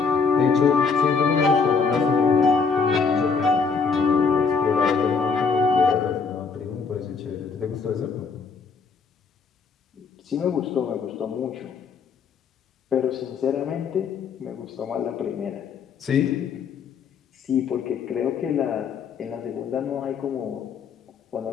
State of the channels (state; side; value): quieter; right; 5.3 dB